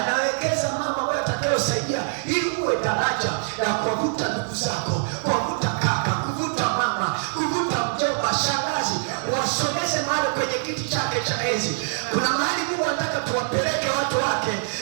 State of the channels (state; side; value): silent; left; 61 dB below the other